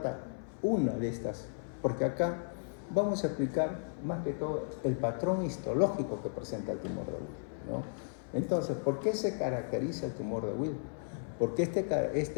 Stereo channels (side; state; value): right; silent; 55 dB below the other